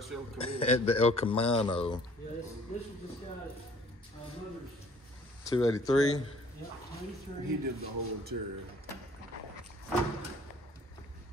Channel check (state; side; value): normal; both; correlation 0.55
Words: Camino. At the El Camino. Yeah, this is this guy's mother's. 283. Yeah, 23. He did the whole interior.